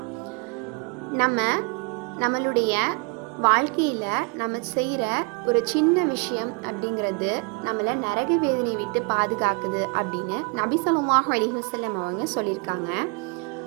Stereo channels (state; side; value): quieter; left; 32.5 dB